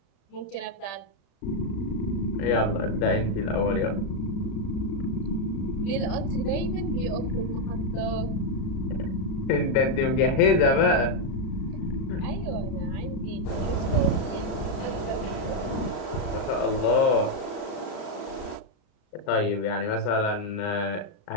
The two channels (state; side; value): late; right; 35 ms